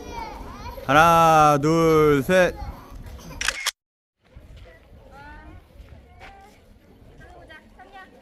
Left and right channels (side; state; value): both; identical; correlation 1.00